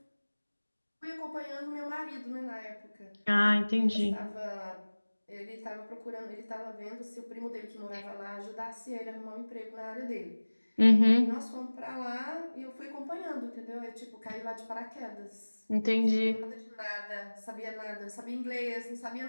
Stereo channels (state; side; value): inverted; both; correlation -1.00